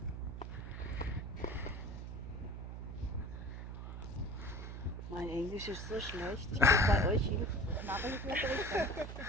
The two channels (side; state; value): right; noise; hum, 7 dB below the sound